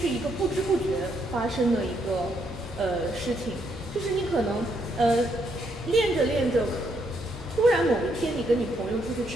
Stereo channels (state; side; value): normal; both; correlation 0.75